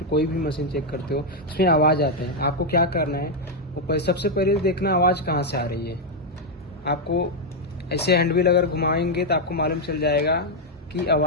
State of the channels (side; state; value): both; normal; correlation 0.01